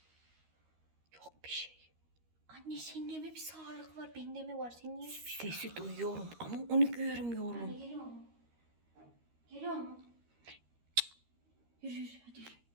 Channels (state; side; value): late; left; 13 ms